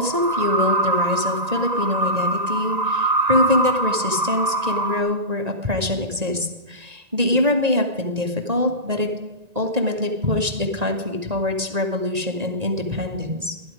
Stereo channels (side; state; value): left; late; 1.9 ms